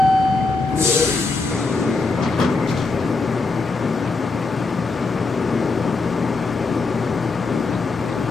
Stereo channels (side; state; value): right; quieter; 3.8 dB